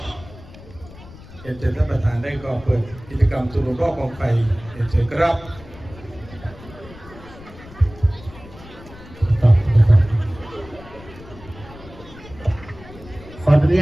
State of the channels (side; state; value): left; noise; rumble, 19 dB below the sound